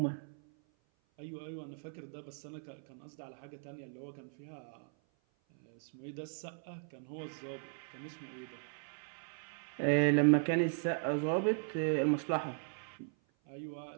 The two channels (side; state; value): left; silent; 53 dB below the other